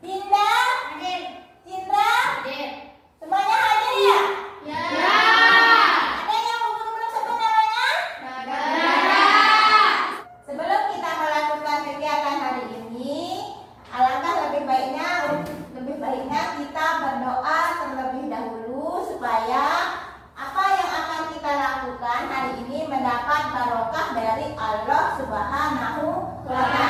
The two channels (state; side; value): identical; both; correlation 1.00